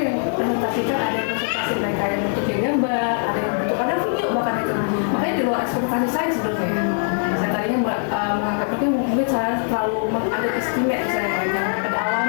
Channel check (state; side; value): silent; right; 59 dB below the other